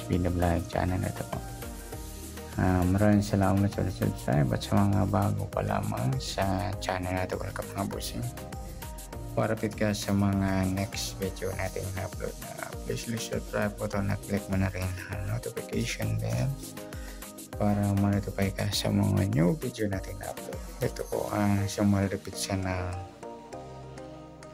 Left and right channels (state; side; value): identical; both; correlation 1.00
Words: Video Vlog channel na ito po. Maraming salamat sa subscribe at sa mga bago pa lamang sa channel na ito. Welcome mga bossing. Parapit ka sa mga next video natin na upload na please subscribe po ito na click mo na rin ang notification bell para ma-notify ka sa mga new video natin na upload. Ito po ang sumalapit siya na